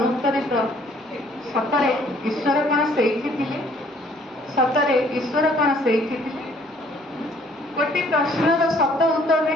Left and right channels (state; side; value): normal; both; correlation 0.60